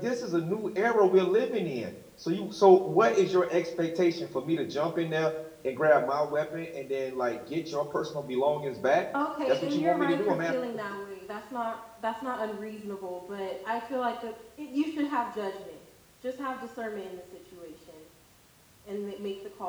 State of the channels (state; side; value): identical; both; correlation 1.00